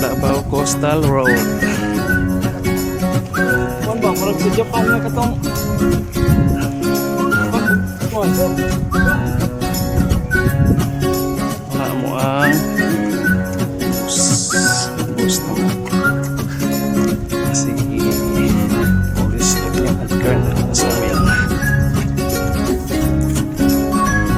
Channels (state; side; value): identical; both; correlation 1.00